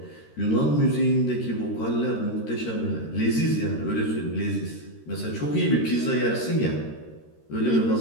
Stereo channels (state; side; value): late; right; 13 ms